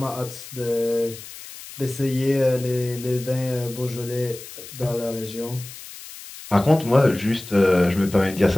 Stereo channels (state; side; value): noise; left; hiss, 15 dB below the sound